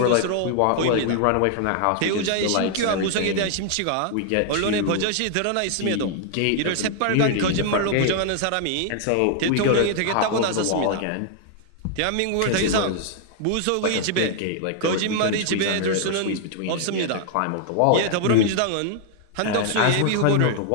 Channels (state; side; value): different; both; correlation 0.00